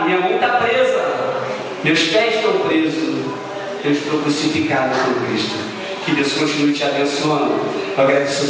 minha mão está presa, meus pés estão presos. Eu estou crucificado por Cristo. Que Deus continue te abençoando. Eu agradeço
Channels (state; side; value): identical; both; correlation 1.00